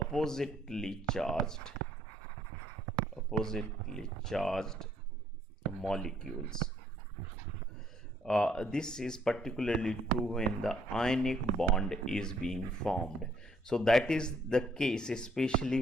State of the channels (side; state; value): both; normal; correlation 0.66